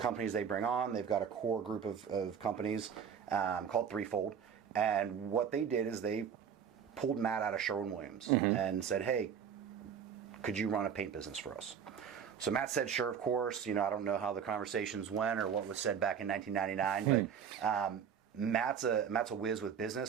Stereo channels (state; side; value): quieter; left; 7.7 dB